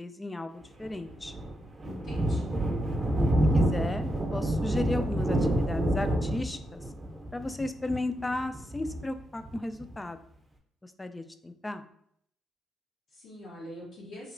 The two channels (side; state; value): both; normal; correlation 0.85